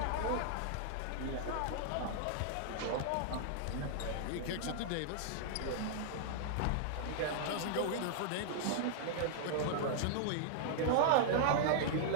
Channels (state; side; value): different; both; correlation -0.01